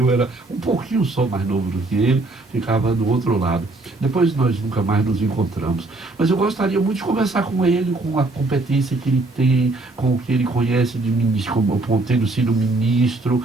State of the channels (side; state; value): left; quieter; 3.0 dB